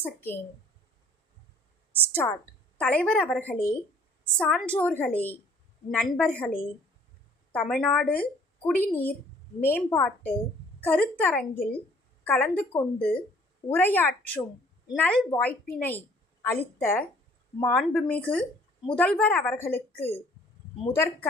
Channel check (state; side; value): normal; both; correlation 0.57